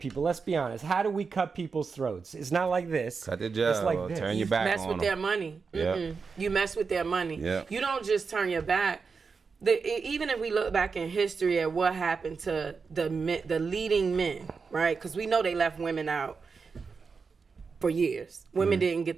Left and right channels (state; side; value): quieter; left; 5.1 dB